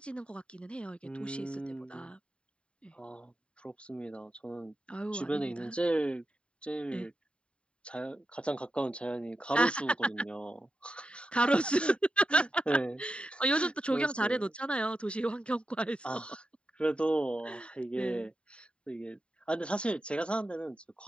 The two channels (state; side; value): late; right; 0.056 ms